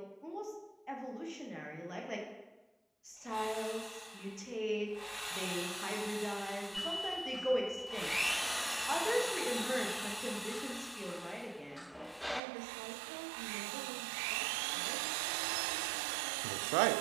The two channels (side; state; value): left; drops out; at 12.4 s